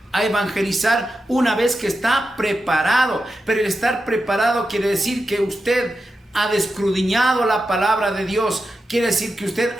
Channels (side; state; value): both; normal; correlation 0.90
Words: a evangelizar una vez que está preparado. Pero el estar preparado quiere decir que usted ha escudriñado la palabra de Dios. Quiere decir que usted